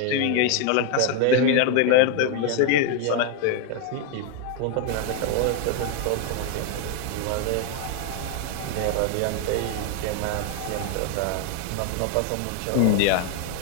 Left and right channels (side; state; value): both; different; correlation 0.01